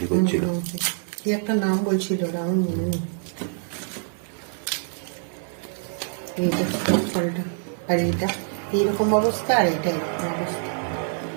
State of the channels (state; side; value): silent; left; 62 dB below the other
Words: করছিল। কি একটা নাম বলছিল, আমার মনে নেই। এইটা টক ফলটা, আর এইটা এইরকম অবস্থা, আর এটা এরকম অবস্থা।